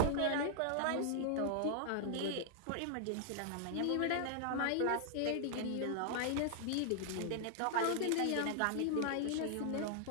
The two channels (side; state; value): both; different; correlation 0.00